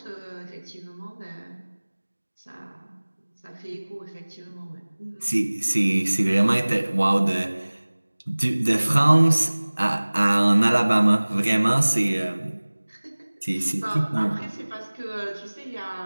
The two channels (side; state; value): both; inverted; correlation -1.00